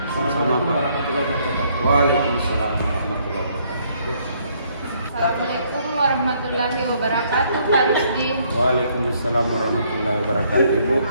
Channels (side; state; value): both; inverted; correlation -0.68